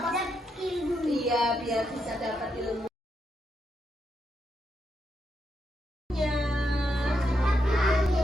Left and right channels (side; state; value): both; normal; correlation 0.82